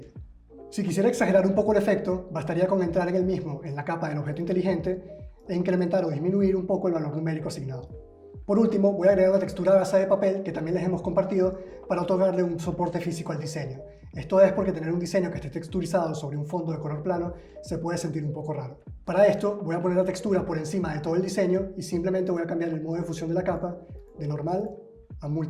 Si quisiera exagerar un poco el efecto, bastaría con entrar en el mismo, en la capa del objeto inteligente, e incrementar o disminuir un poco el valor numérico asignado. Por último, voy a agregar una textura gasa de papel que también les hemos compartido para otorgarle un soporte físico al diseño. Esto es porque tener un diseño que esté texturizado sobre un fondo de color plano se puede sentir un poco raro. Para esto voy a poner la textura por encima de todo el diseño y simplemente voy a cambiar el modo de fusión de la capa de normal a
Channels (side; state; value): both; identical; correlation 1.00